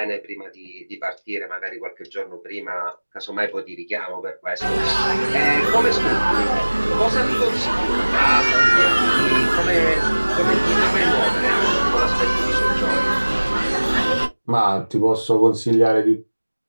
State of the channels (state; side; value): inverted; both; correlation -1.00